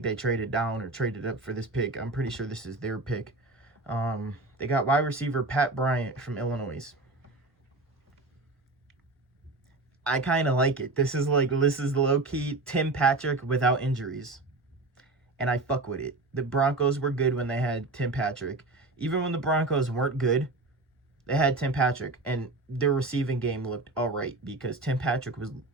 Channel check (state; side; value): quieter; left; 3.2 dB